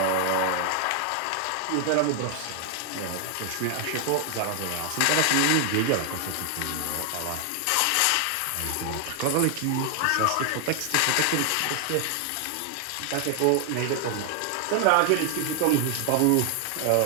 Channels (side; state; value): both; different; correlation 0.00